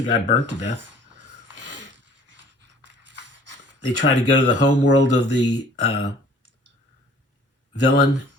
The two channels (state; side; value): normal; both; correlation 0.51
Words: guy burnt to death. They try to go to the home world of the villain,